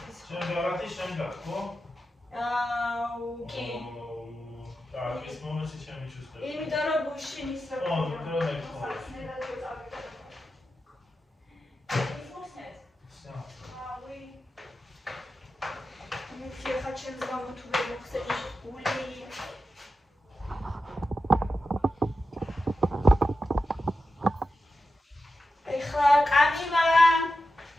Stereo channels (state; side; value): normal; both; correlation 0.91